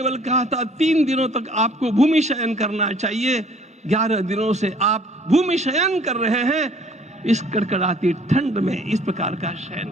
कहा था 3 दिनों तक आपको भूमि शयन करना चाहिए। 11 दिनों से आप भूमि शयन कर रहे हैं। इस कड़कड़ाती ठंड में इस प्रकार का शयन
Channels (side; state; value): both; normal; correlation 0.56